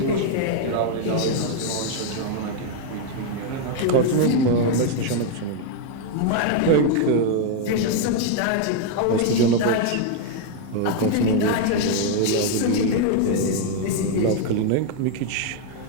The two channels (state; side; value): different; both; correlation 0.00